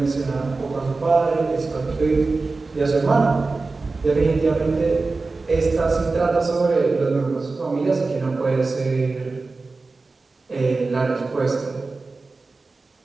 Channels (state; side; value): quieter; left; 3.8 dB